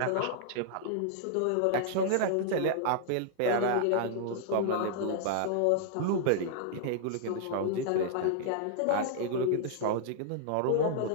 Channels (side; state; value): both; different; correlation -0.01